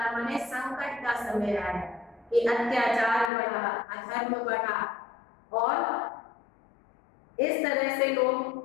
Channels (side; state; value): right; drops out; at 3.3 s